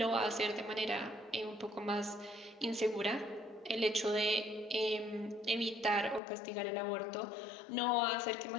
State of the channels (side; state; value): right; drops out; at 6.2 s